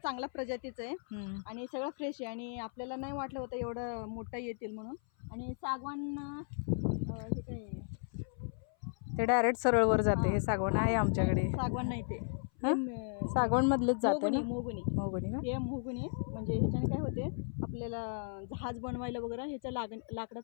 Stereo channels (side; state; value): right; silent; 54 dB below the other